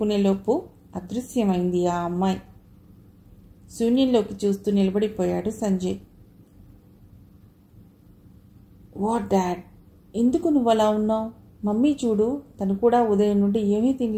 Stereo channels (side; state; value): both; identical; correlation 1.00